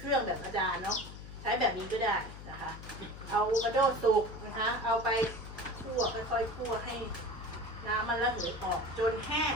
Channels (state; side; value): noise; left; hum, 13 dB below the sound